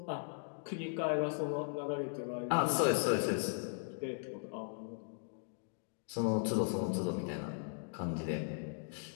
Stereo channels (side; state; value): right; silent; digital silence